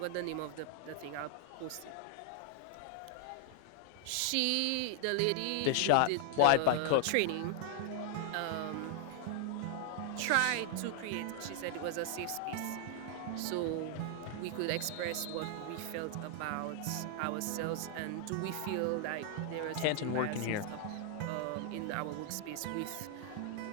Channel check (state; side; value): different; both; correlation 0.00